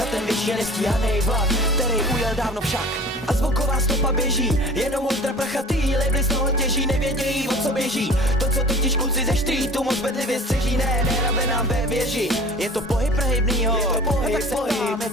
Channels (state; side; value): normal; both; correlation 0.43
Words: ten věčně nestíhanej vlak, který ujel dávno však. A zvuková stopa běží, jenom ultra prachatý labely z toho těží, nevědějí, o co běží. To, co totiž kluci ze streetu moc bedlivě střeží, nehrabe nám ve věži. Je to pohyb prehybnýho, je to pohyb, pohyb, je